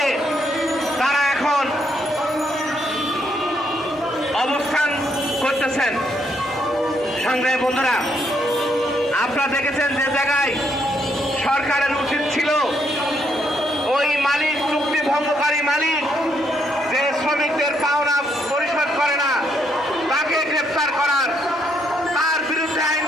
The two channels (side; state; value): both; normal; correlation 0.74